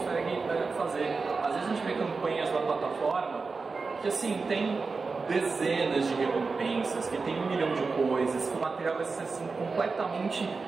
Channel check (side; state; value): left; quieter; 4.4 dB